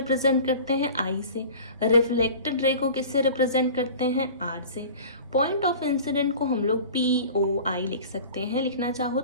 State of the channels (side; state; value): both; inverted; correlation -0.40